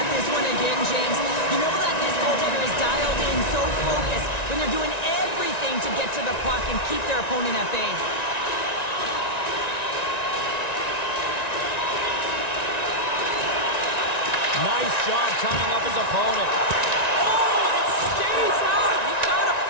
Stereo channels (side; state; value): right; late; 1.9 ms